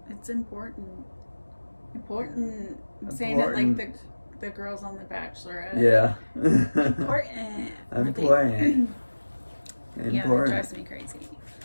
It's important. I'm saying it like the girls on The Bachelorette. Yeah. Important. Important. Yeah, that drives me crazy.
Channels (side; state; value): both; inverted; correlation -1.00